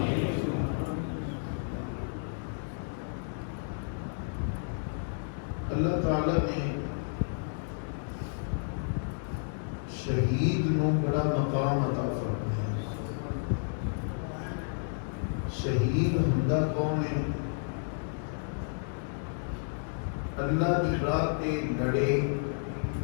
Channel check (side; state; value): right; silent; digital silence